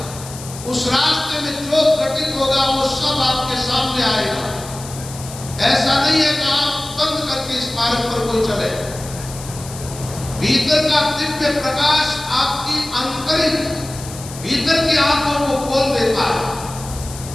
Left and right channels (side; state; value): left; noise; hiss, 14 dB below the sound